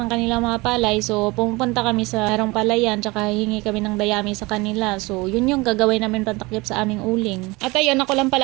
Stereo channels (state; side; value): quieter; left; 23.6 dB